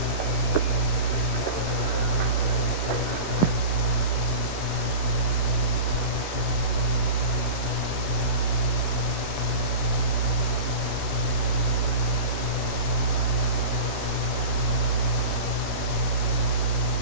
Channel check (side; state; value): right; late; 11 ms